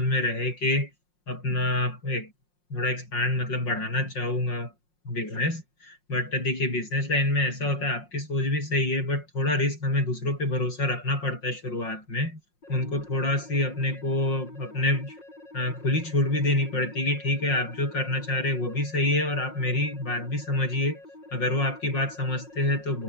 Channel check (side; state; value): right; late; 5.6 ms